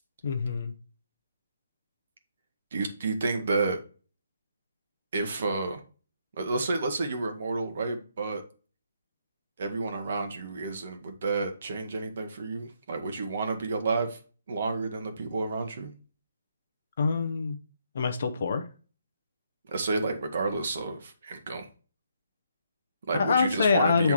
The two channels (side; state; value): both; inverted; correlation -0.74